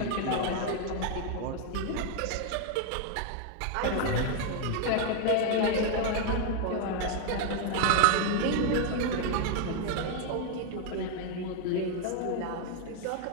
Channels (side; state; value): both; different; correlation 0.00